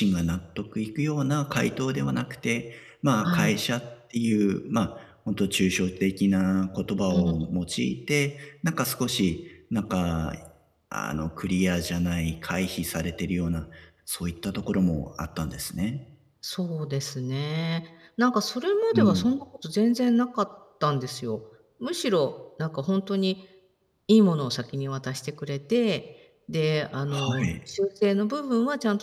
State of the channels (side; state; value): both; identical; correlation 1.00